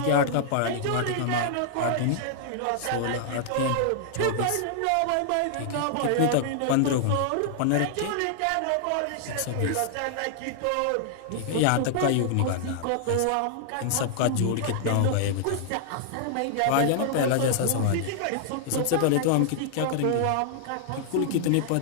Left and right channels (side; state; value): both; different; correlation -0.01